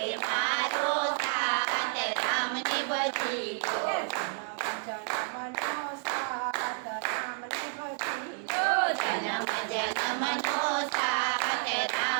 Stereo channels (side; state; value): left; silent; 58 dB below the other